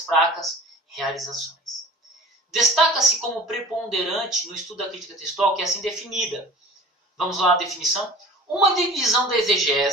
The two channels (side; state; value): both; normal; correlation 0.42